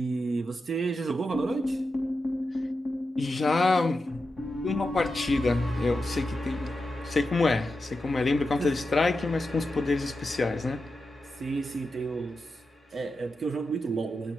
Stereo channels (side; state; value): both; normal; correlation 0.89